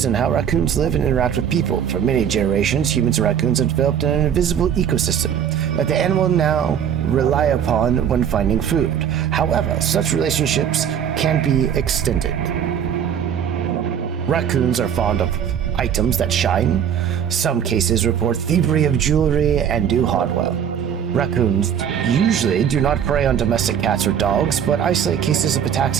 in how raccoons live and interact with people. For many generations, humans and raccoons have developed an invisible ecosystem. Like the animal now rely upon when finding food. However, such relationships can be extended. Raccoons are fond of items that shine. Some cases report thievery of jewelry and do hardware. Raccoons usually do not prey on domestic cats or dogs, but isolated cases of attacks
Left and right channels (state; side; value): quieter; left; 8.6 dB